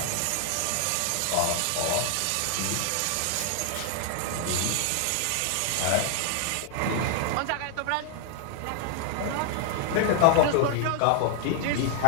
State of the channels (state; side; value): different; both; correlation 0.00